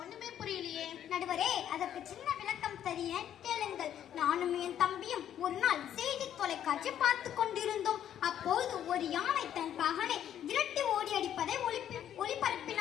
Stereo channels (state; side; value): quieter; right; 10.3 dB